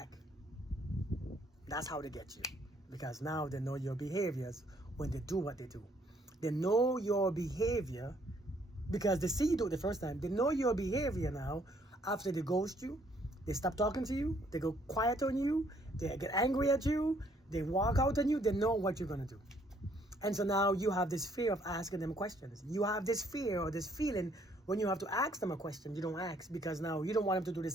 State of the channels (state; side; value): normal; both; correlation 0.66